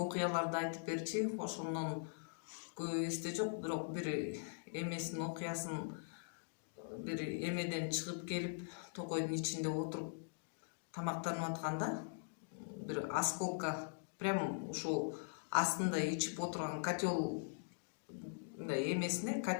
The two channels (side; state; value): right; silent; digital silence